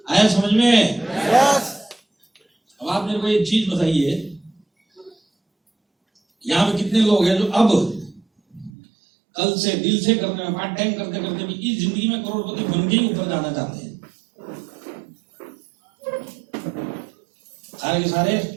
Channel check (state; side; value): drops out; left; at 8.7 s